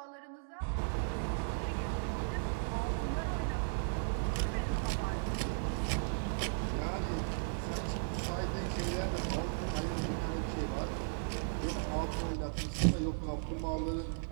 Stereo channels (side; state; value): left; silent; digital silence